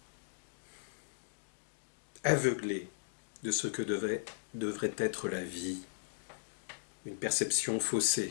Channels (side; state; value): right; silent; digital silence